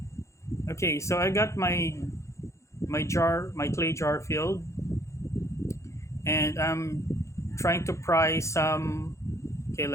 okay, so I got my clay jar filled, and I'm trying to pry some. Okay,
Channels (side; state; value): right; late; 0.14 ms